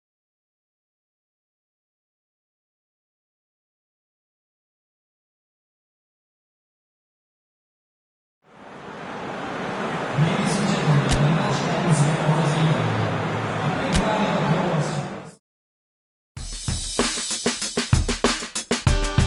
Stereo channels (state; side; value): identical; both; correlation 1.00